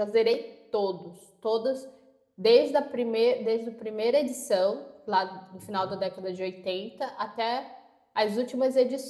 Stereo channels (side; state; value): both; identical; correlation 1.00